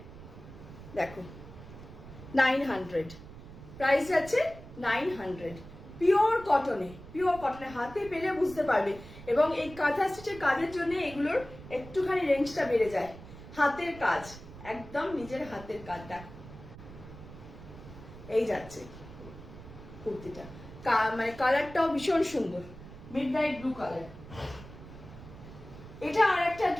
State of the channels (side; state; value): right; noise; rumble, 16 dB below the sound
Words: দেখো 900, প্রাইস যাচ্ছে 900, পিওর কটনে হাতে পেলে বুঝতে পারবে। এবং এই কাঁথা স্টিচের কাজের জন্য এগুলোর একটুখানি রেঞ্জটা বেড়ে যায়। হাতের কাজ, একদম নিজের হাতের কাজ। দেখো এই যাচ্ছে কুর্তিটা, মানে কালারটাও ভীষণ সুন্দর, মিডনাইট ব্লু কালার। এটা আর একটা